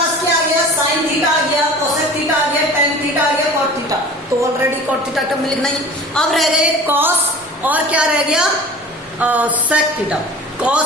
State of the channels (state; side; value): normal; both; correlation 0.40